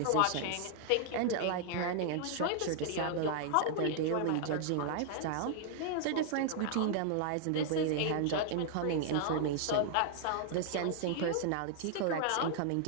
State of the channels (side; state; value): both; different; correlation -0.01